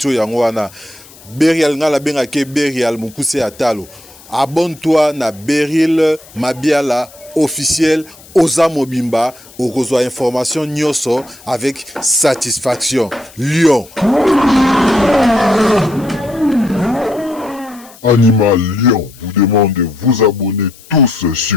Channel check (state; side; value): noise; left; hiss, 23 dB below the sound